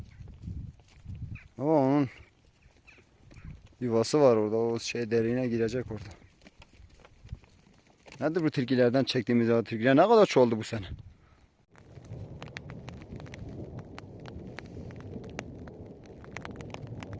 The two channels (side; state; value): both; identical; correlation 1.00